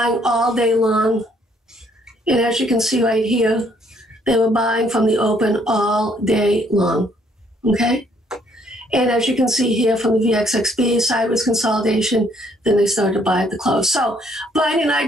all day long. And as you can see right here, they were buying from the open all day long, okay? And as you can see here from the VXXB, sideways consolidation, then they started to buy at the close. So Brian and I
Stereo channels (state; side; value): normal; both; correlation 0.66